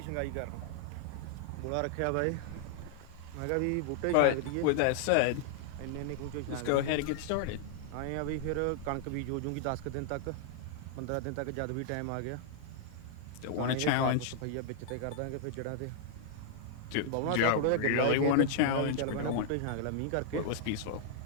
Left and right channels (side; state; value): both; different; correlation -0.01